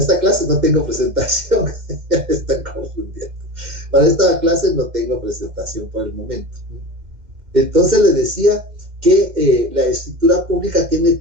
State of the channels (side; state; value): left; late; 2.0 ms